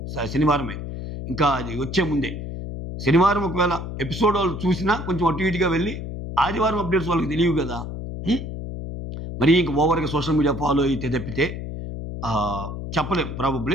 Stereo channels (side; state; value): left; noise; hum, 7 dB below the sound